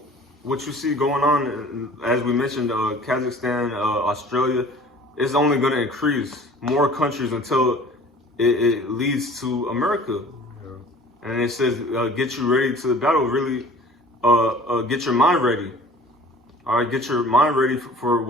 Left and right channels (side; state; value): both; normal; correlation 0.47